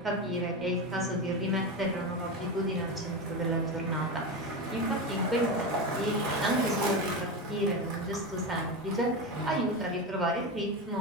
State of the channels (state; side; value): normal; both; correlation 0.19